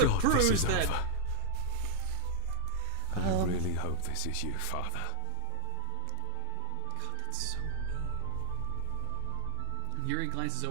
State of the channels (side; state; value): both; different; correlation 0.00